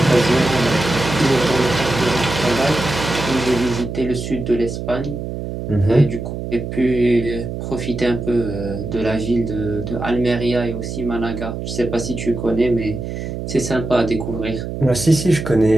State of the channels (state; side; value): noise; right; hum, 6 dB below the sound